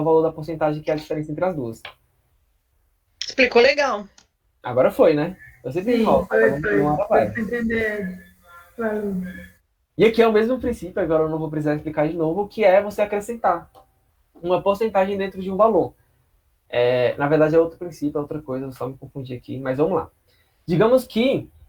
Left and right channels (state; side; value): identical; both; correlation 1.00